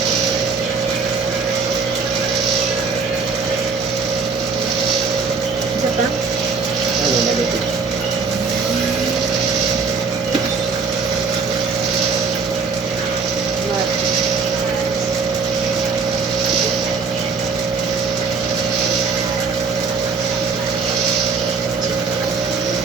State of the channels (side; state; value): left; quieter; 5.0 dB